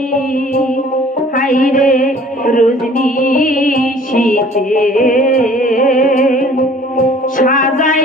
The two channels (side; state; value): both; normal; correlation 0.52